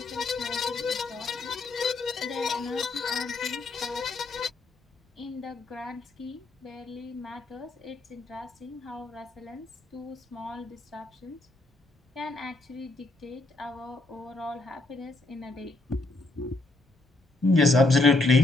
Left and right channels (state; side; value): quieter; right; 3.0 dB